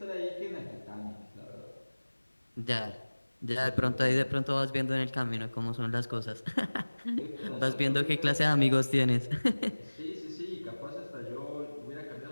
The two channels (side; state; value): both; inverted; correlation -1.00